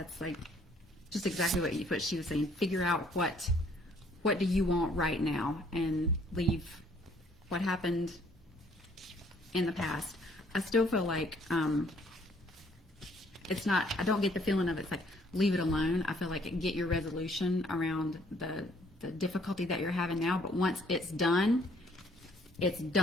like just exactly what she was saying. Figure out what do you want right now, and leave what happened in the past. I still feel like it's not. I don't get the feeling of it's like leave it alone. I feel like get your resolution around the difficulty that you're having now. But once it's done, it's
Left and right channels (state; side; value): normal; both; correlation 0.63